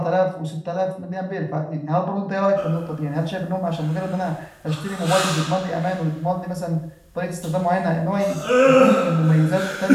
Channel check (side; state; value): both; identical; correlation 1.00